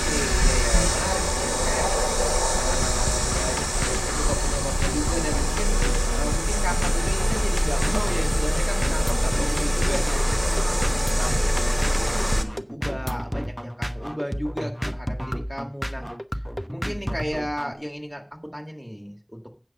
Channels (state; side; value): identical; both; correlation 1.00